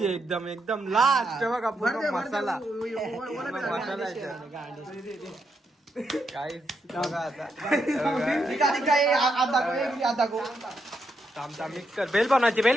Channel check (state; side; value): normal; both; correlation 0.81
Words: एकदम एकदम लास्ट बघा पूर्ण मसाला मसाला काहीच बघा आता थांब थांब मिक्स कर. बेल बनवायची.